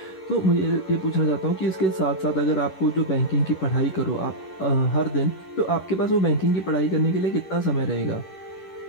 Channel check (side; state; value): right; late; 11 ms